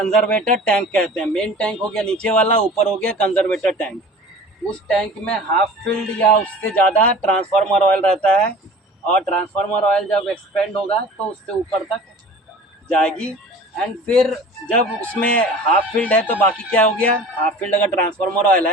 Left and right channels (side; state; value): both; normal; correlation 0.42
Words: टैंक कहते हैं। मेन टैंक हो गया नीचे वाला, ऊपर हो गया कंजर्वेटर टैंक। उस टैंक में हाफ फिल्ड या उससे ज़्यादा ट्रांसफार्मर ऑयल रहता है, और ट्रांसफार्मर ऑयल जब एक्सपेंड होगा तो उससे ऊपर तक जाएगी। एंड फिर जब उसमें हाफ फील्ड है तो बाकी क्या हो गया, हाफ फील्ड अगर ट्रांसफार्मर ऑयल